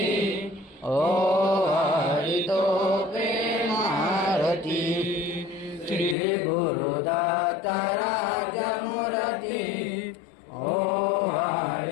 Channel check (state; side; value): drops out; right; at 6.2 s